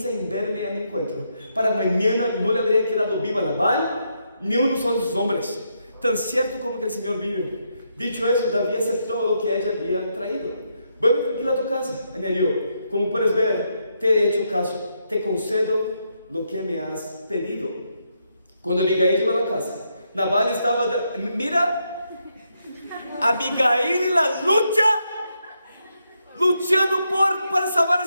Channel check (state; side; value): inverted; both; correlation -0.80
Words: en verme a mi encuentro, para mañana no le habría quedado viva Nabal ni uno solo de sus hombres, tan cierto como que el Señor vive. Dicho eso, David aceptó lo que ella había traído. Vuelve tranquila a tu casa, añadió. Como puedes ver, te he hecho caso, te concedo lo que me has pedido. Cuando Abigail llegó a la casa, Nabal estaba, mira, Abigail en la lucha, luchando para salvar a